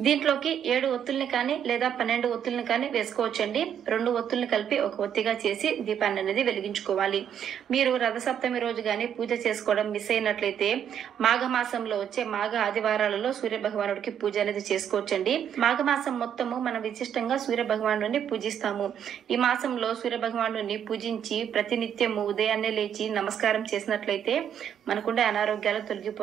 దీంట్లోకి 7 ఒత్తుల్ని కానీ లేదా 12 ఒత్తుల్ని కానీ వేసుకోవచ్చండి. 2 ఒత్తుల్ని కలిపి ఒక ఒత్తిగా చేసి దీపాన్ని అనేది వెలిగించుకోవాలి. మీరు రథసప్తమి రోజు కానీ పూజ చేసుకోవడం మిస్ అయినట్లయితే మాఘమాసంలో వచ్చే మాఘ ఆదివారాలలో సూర్య భగవానుడికి పూజ అనేది చేసుకోవచ్చండి. మాఘమాసం మొత్తము మనం విశిష్టంగా సూర్య భగవానుడిని పూజిస్తాము. ఈ మాసంలో సూర్య భగవానుడిని పూజించి ప్రతినిత్యము ఉదయాన్నే లేచి నమస్కారం చేసినట్లయితే మనకుండే అనారోగ్యాలు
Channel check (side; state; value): left; quieter; 8.9 dB